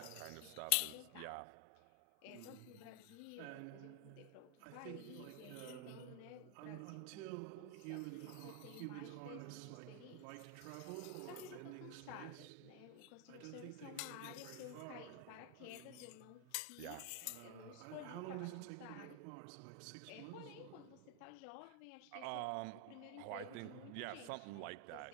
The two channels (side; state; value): both; different; correlation 0.00